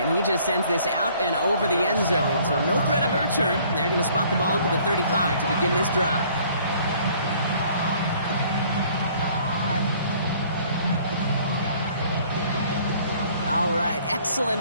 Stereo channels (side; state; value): both; inverted; correlation -0.58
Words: he just sends this out and over the end zone, so no threat of a return. They're going to spot the ball up at the 35 to begin this drive. All right,